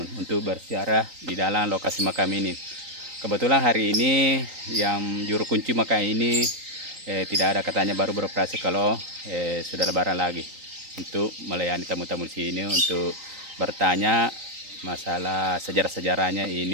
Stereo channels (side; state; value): left; late; 3.9 ms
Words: untuk berziarah di dalam lokasi makam ini. Kebetulan hari ini yang juru kunci makam ini tidak ada, katanya baru beroperasi kalau sudah lebaran lagi, untuk melayani tamu-tamu di sini untuk bertanya masalah sejarah-sejarahnya